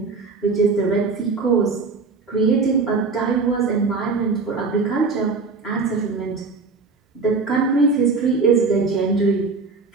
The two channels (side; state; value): left; quieter; 4.3 dB